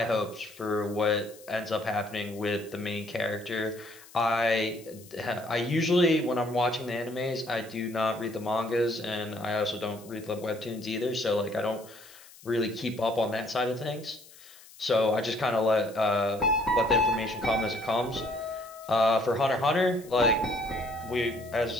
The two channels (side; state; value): left; noise; hiss, 22 dB below the sound